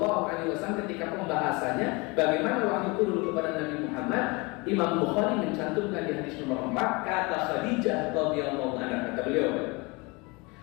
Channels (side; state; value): right; quieter; 26.9 dB